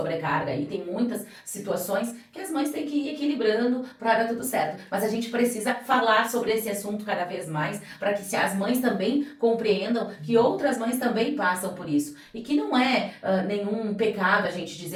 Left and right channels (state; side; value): identical; both; correlation 1.00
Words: e tem muitas situações que as mães têm que ir equilibrando para dar tudo certo. Mas a gente precisa falar sobre esse assunto cada vez mais, para que as mães também compreendam que outras mães também passam por isso. E que não é nenhum pecado a gente